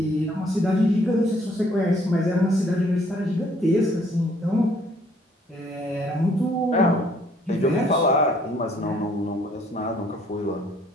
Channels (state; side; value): normal; both; correlation 0.63